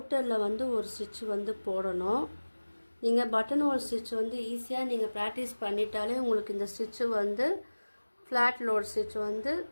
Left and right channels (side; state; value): both; inverted; correlation -1.00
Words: வந்து ஒரு ஸ்டிச் வந்து போடணும். நீங்கள் பட்டன் ஹோல் ஸ்டிச் வந்து ஈஸியாக நீங்கள் ப்ராக்டிஸ் பண்ணிட்டாலே உங்களுக்கு இந்த ஸ்டிச்சு வந்து ஃப்ளாட் லோட் ஸ்டிச் வந்து